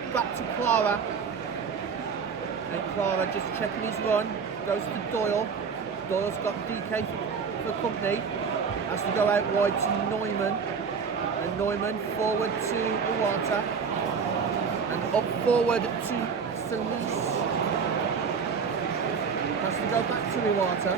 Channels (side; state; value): left; quieter; 5.9 dB